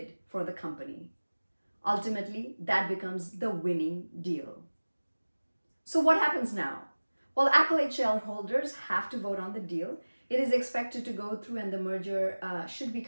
for the company. Ultimately, that becomes the winning deal. So what happens now? Well, Accolade shareholders have to vote on the deal. It is expected to go through and the merger should be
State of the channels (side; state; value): both; inverted; correlation -1.00